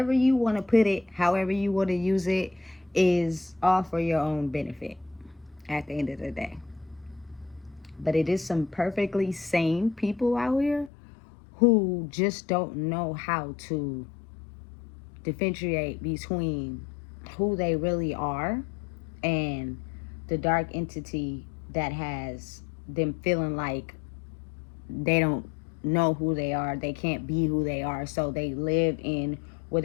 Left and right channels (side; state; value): right; drops out; at 10.9 s